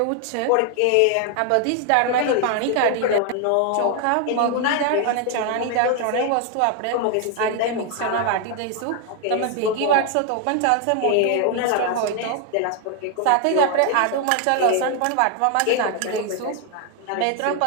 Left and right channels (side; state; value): both; different; correlation 0.01